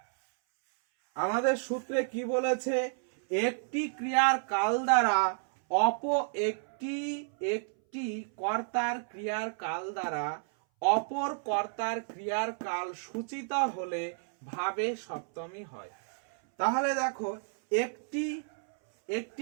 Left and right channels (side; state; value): left; silent; 57 dB below the other